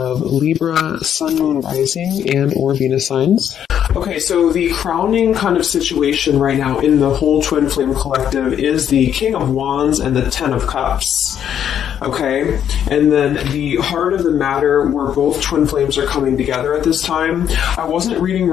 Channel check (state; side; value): quieter; right; 9.3 dB